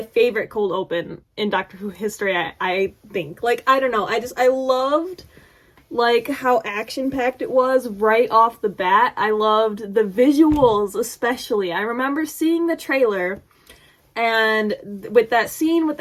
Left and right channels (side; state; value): both; identical; correlation 1.00